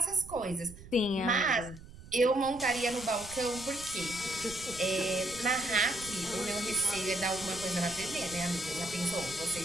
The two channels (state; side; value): noise; right; rumble, 17 dB below the sound